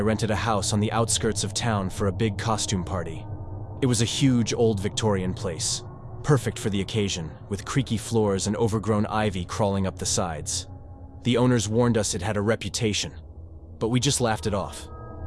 a house on the outskirts of town for a big costume party. It was a huge old Victorian place, perfect for the occasion, with creaky floors and overgrown ivy crawling up the sides. The owners warned us it had a reputation, but we just laughed it off.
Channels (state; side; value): identical; both; correlation 1.00